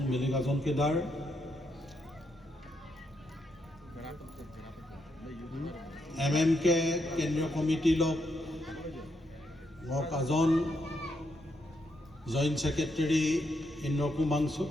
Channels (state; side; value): normal; both; correlation 0.79